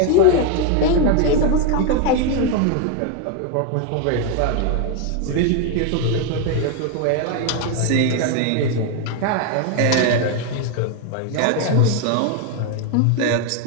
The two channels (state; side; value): different; both; correlation 0.01